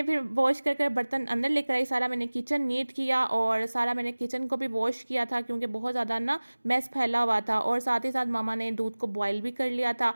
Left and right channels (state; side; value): inverted; both; correlation -1.00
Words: फिर वॉश कर बर्तन अंदर लेकर आई, सारा मैंने किचन नीट किया और सारा मैंने किचन को भी वॉश किया था, क्योंकि बहुत ज़्यादा ना मैस फैला हुआ था। और साथ ही साथ मामा ने दूध को बॉईल भी कर लिया था।